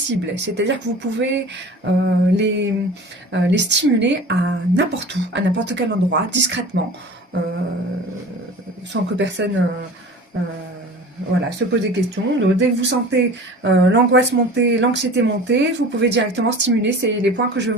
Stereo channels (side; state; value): both; normal; correlation 0.40